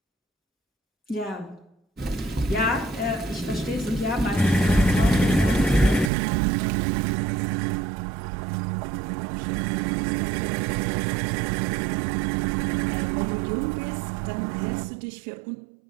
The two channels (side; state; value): left; drops out; at 6.1 s